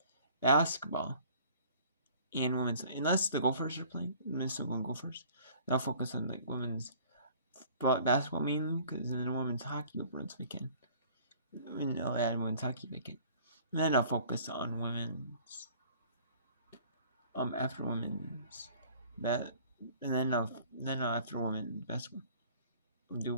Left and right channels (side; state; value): both; inverted; correlation -0.52